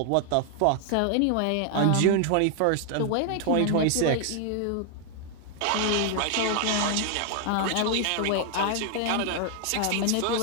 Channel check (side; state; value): both; different; correlation 0.00